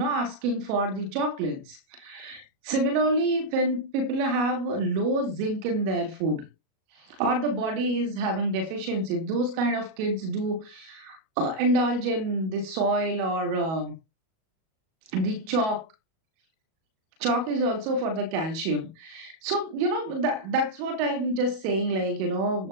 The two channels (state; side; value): late; left; 37 ms